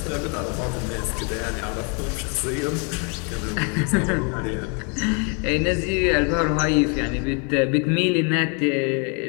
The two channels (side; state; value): right; quieter; 36.5 dB